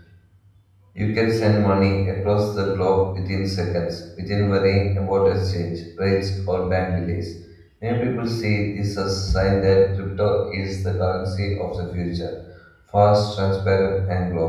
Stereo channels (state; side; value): identical; both; correlation 1.00